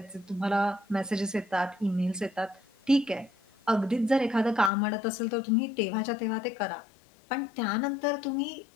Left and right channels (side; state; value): right; drops out; at 4.7 s